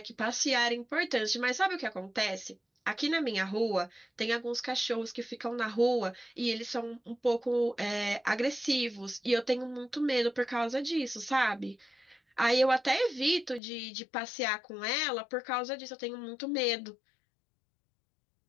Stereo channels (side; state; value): right; drops out; at 13.6 s